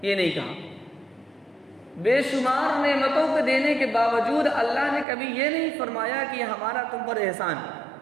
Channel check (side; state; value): left; drops out; at 5.1 s